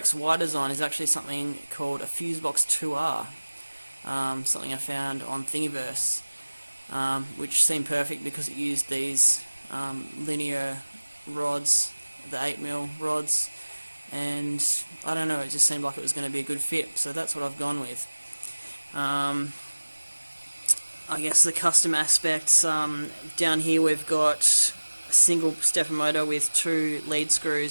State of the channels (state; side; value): inverted; both; correlation -1.00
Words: design is actually something called a FuseBox2R, something I found on Thingiverse, which seemed perfect because it used these linear rods, the 8mm rods, and I don't know, it just seemed like it was going to be a good fit, so that's what I've gone with. I guess the custom aspects, down here we've got a single stepper motor with 2 lead